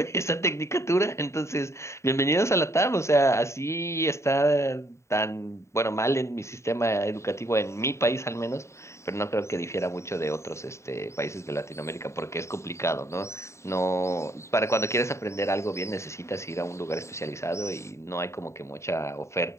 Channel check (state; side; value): late; right; 0.14 ms